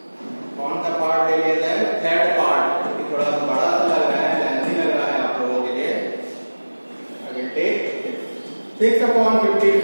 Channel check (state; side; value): inverted; both; correlation -1.00